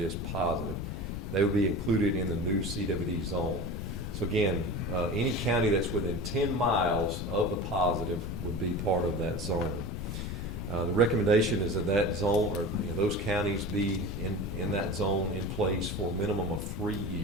positive. They would be included in the new CWD zone. So again, any county that's within 10 miles of the positive would be part of that zone. The recommendation is that zone, or those counties, be in that zone in place for a minimum of 3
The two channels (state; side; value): noise; left; rumble, 5 dB below the sound